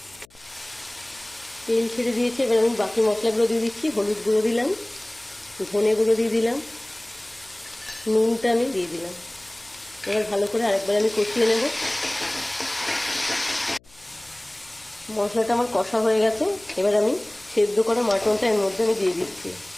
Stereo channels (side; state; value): left; noise; hum, 30 dB below the sound